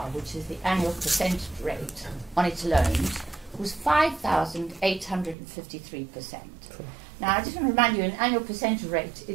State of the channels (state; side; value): drops out; left; at 5.4 s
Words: which is the annual percentage rate on its loans, was 5,853%. Now, I just want to remind you, an annual percentage rate